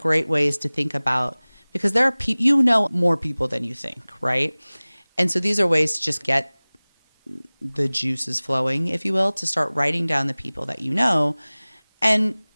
ways to think about, because there are you know more people than you think, right? And so these are ways to just get the juices flowing, if you will, to start writing down the people that you know, and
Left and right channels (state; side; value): inverted; both; correlation -1.00